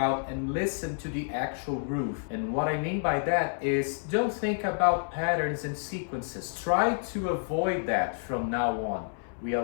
and listen to the actual groove. And what I mean by that is, don't think about patterns and sequences. Try to avoid that from now on. We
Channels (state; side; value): silent; right; 58 dB below the other